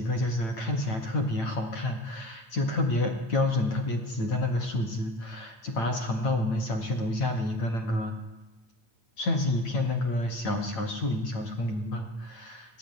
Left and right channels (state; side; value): late; right; 9.0 ms